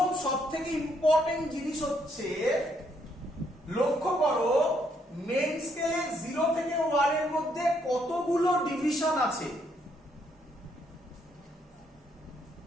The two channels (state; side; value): normal; both; correlation 0.72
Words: সব থেকে ইম্পর্টেন্ট জিনিস হচ্ছে, লক্ষ্য করো মেইন স্কেলে 0 থেকে 1 এর মধ্যে কতগুলো ডিভিশন আছে।